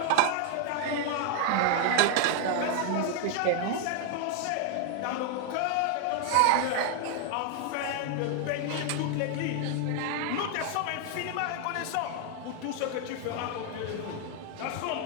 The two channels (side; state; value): both; different; correlation 0.00